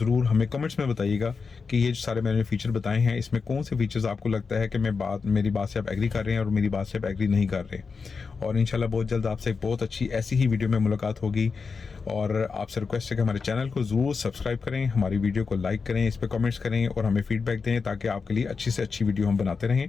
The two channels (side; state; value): right; quieter; 5.0 dB